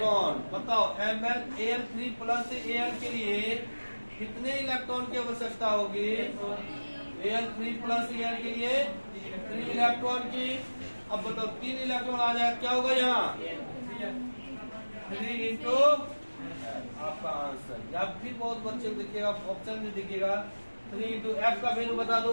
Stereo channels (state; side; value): inverted; both; correlation -1.00